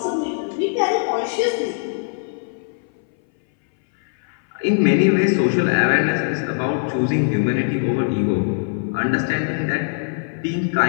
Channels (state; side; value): silent; right; 61 dB below the other